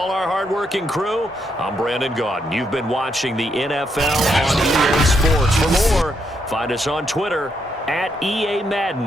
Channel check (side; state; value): both; normal; correlation 0.78